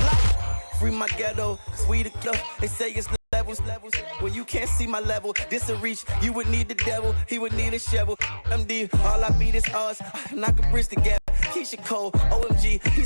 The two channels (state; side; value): inverted; both; correlation -1.00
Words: Free my ghetto, sweet club. They say it's levels. When you can't see my level, this a reach. You would need the devil, he would need a shovel. MD, all I beat is us. Knock a bridge together. Keisha Cole, OMG,